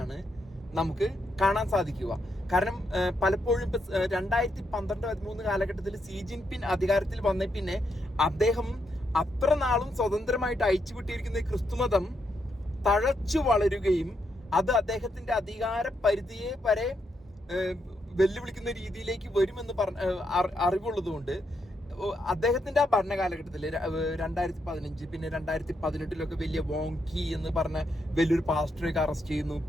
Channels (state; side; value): normal; both; correlation 0.80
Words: നമുക്ക് കാണാൻ സാധിക്കുക. കാരണം പലപ്പോഴും 2012-13 കാലഘട്ടത്തിൽ സി ജിൻപിൻ അധികാരത്തിൽ വന്ന പിന്നെ അദ്ദേഹം അത്ര നാളും സ്വതന്ത്രമായിട്ട് അയച്ചുവിട്ടിരിക്കുന്ന ക്രിസ്തുമതം തഴച്ചു വളരുകയും അത് അദ്ദേഹത്തിന്റെ അധികാര പരിധിയെ വരെ വെല്ലുവിളിക്കുന്ന രീതിയിലേക്ക് വരുമെന്ന് അറിവുള്ളതുകൊണ്ട് അദ്ദേഹത്തിന്റെ ആ ഭരണകാലഘട്ടത്തിൽ 2015 പിന്നെ 2018 വലിയ വോങ്കി എന്ന് പറഞ്ഞ വലിയൊരു പാസ്റ്ററൊക്കെ അറസ്റ്റ് ചെയ്യുന്നു.